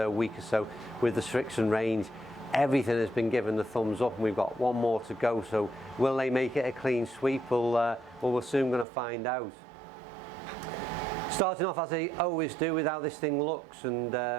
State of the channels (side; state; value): left; drops out; at 8.8 s